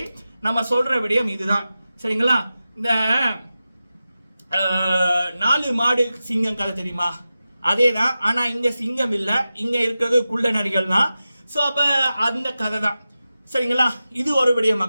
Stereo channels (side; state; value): both; inverted; correlation -0.93